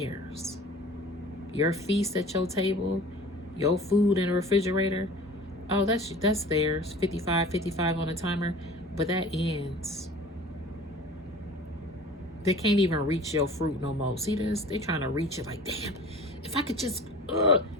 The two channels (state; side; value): normal; both; correlation 0.42